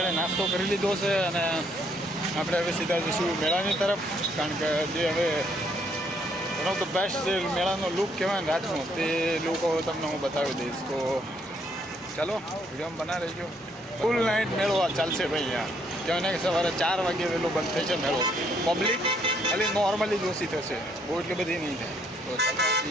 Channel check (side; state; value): both; normal; correlation 0.69